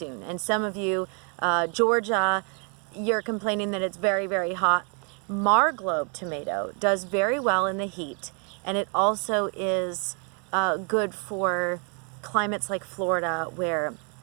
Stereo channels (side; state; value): left; quieter; 37.9 dB